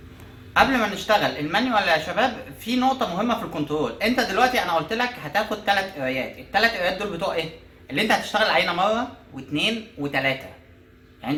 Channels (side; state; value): both; identical; correlation 1.00